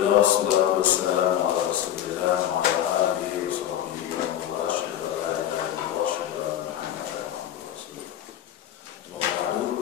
wassalatu wassalamu ala Rasulillah wa ala alihi wa sahbihi wa man wala, asyhadu an la ilaha illallah wa asyhadu anna Muhammadan abduhu wa rasuluh. Semoga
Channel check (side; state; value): right; quieter; 11.2 dB